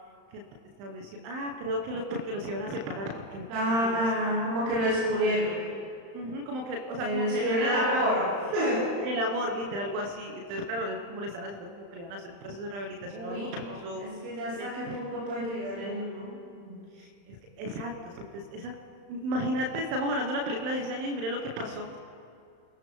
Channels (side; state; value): left; late; 35 ms